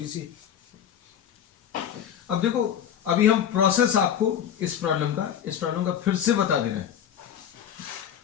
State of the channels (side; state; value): right; quieter; 9.3 dB